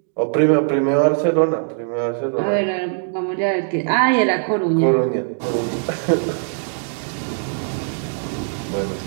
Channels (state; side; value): silent; left; digital silence